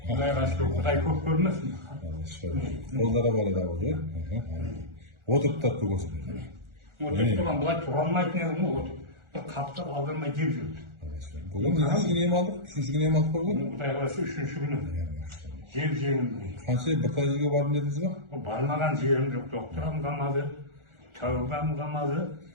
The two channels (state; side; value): late; left; 1.4 ms